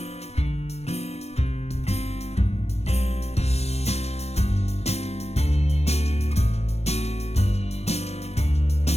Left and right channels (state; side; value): late; right; 0.31 ms